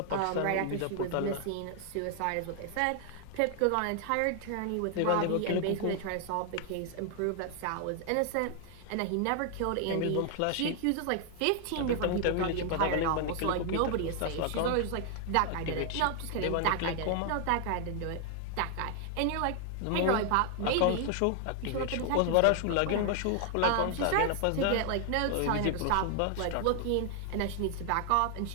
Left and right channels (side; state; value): both; different; correlation 0.00